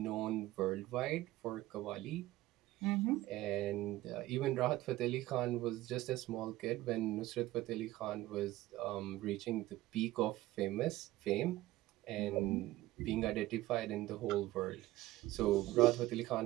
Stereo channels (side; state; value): left; quieter; 17.0 dB